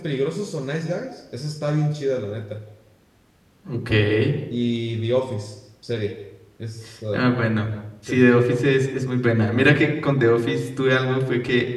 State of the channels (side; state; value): both; identical; correlation 1.00